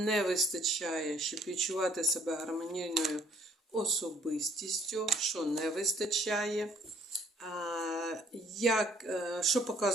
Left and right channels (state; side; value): normal; both; correlation 0.61